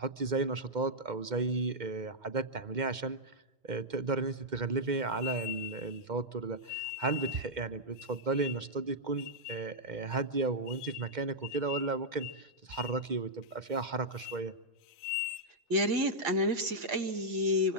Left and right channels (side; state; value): left; late; 2.2 ms